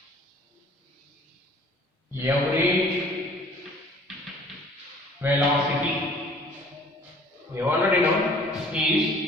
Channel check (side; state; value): both; normal; correlation 0.52